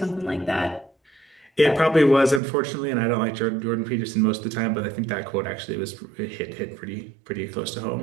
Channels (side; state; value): left; drops out; at 2.4 s